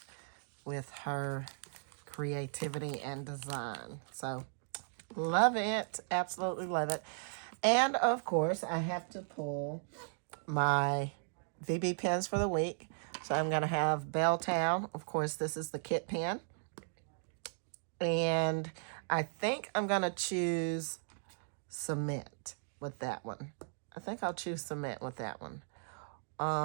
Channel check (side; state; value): left; silent; digital silence